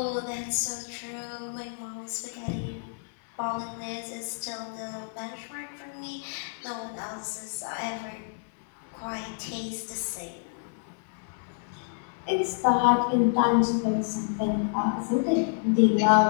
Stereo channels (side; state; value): right; silent; 59 dB below the other